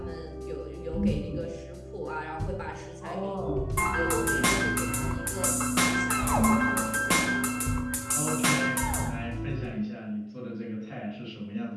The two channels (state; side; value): identical; both; correlation 1.00